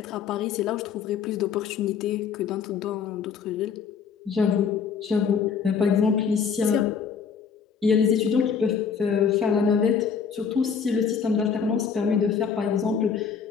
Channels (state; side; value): quieter; right; 6.4 dB